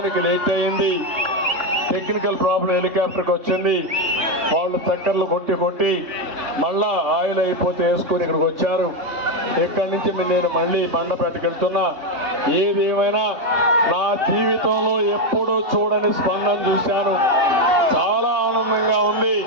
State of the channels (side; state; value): left; late; 3.5 ms